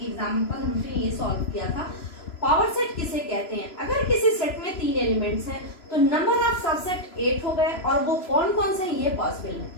एग्जांपल हमने ये सॉल्व किया था। पावर सेट किसे कहते हैं? अगर किसी सेट में 3 एलिमेंट्स हैं तो नंबर ऑफ सबसेट 8 हो गए, और वो कौन कौन से ये पॉसिबल है।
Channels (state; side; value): late; right; 3.0 ms